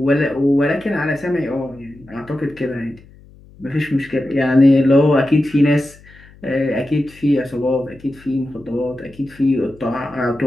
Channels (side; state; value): left; noise; hum, 24 dB below the sound